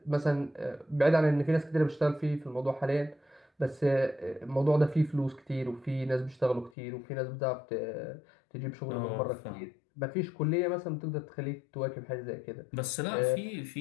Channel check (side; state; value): right; drops out; at 6.7 s